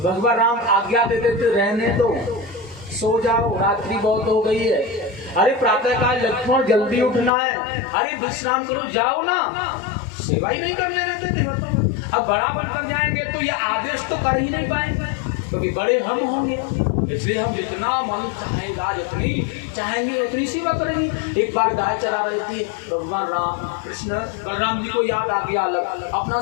भगवान राम आज्ञा देते थे रहने दो, सो जाओ, रात्रि बहुत हो गई है। अरे प्रातः काल लक्ष्मण जल्दी उठना है, अरे विश्राम करो, जाओ ना, सेवा ही नहीं करने देते थे। अब बड़ा बनकर जाएंगे तो ये आदेश तो कर ही नहीं पाएंगे, क्योंकि बड़े हम होंगे। इसलिए हम जितना मन चाहेगा, जितनी चाहेंगे उतनी सेवा करेंगे। एक बार गाय चरा रहे थे, भगवान राम कृष्ण बलराम जी को याद आ गया अपना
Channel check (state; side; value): drops out; right; at 7.3 s